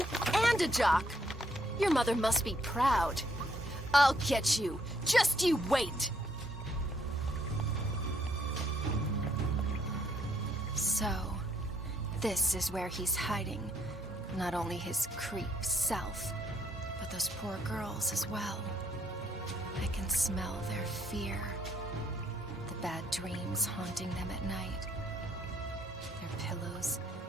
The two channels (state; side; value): normal; both; correlation 0.69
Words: and a jock. Your mother must be proud. I'll get you. Just you wait. So, this is where he's hiding. Not only his creep self, but those poor girls as well. I can smell their fear. The bad dreams haunting them at night. Their pillows